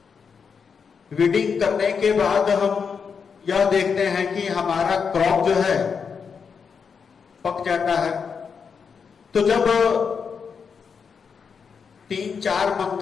वीडिंग करने के बाद हम यह देखते हैं कि हमारा क्रॉप जो है पक जाता है। तो जब 3-4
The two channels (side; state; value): right; quieter; 6.1 dB